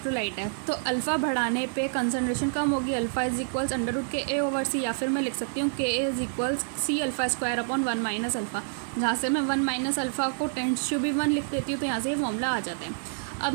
है तो अल्फ़ा बढ़ाने पे कंसनट्रेशन कम होगी, अल्फ़ा इज इक्वल्स √KA/C, या फिर मैं लिख सकती हूँ KA is equals C⁴/1 minus alpha, जहाँ से मैं 1 माइनस अल्फ़ा को टेंड्स टू बी 1 लिख देती हूँ, तो यहाँ से ये फॉर्मूला आ जाता है। अब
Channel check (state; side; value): silent; left; digital silence